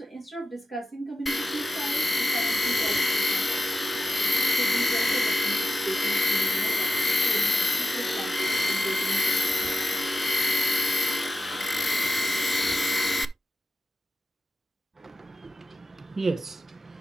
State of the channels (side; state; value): both; normal; correlation 0.92